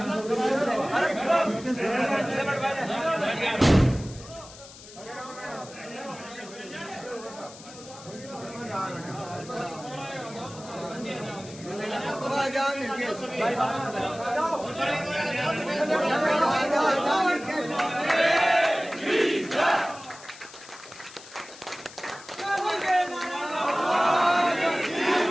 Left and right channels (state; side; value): noise; left; hiss, 18 dB below the sound